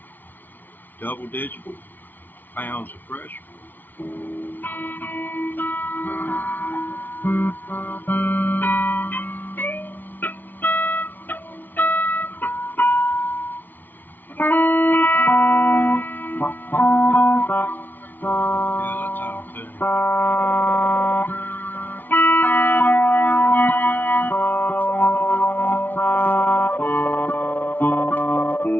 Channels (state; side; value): late; right; 0.088 ms